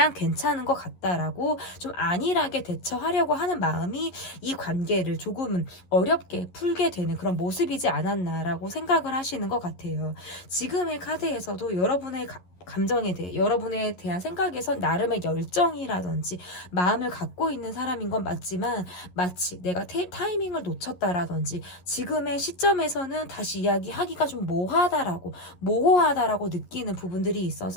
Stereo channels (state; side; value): late; right; 11 ms